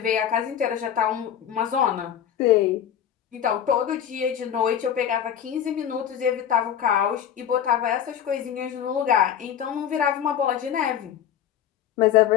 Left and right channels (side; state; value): right; quieter; 9.5 dB